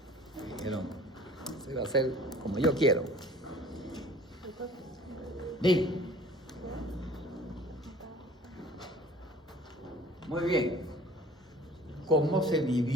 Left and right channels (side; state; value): both; normal; correlation 0.48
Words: Dijeron, se va a hacer como yo quiero. Di. Muy bien. ¿Cómo se